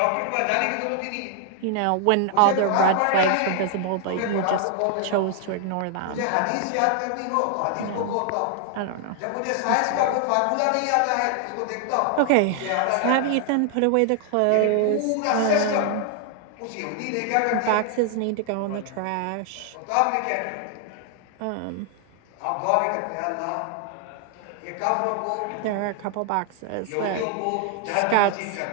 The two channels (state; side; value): different; both; correlation 0.00